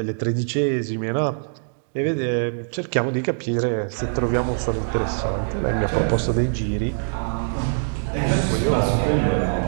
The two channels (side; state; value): left; silent; digital silence